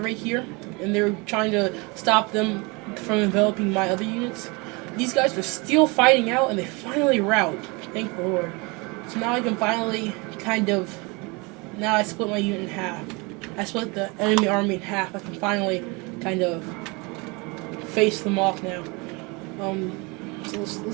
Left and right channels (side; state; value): left; quieter; 27.9 dB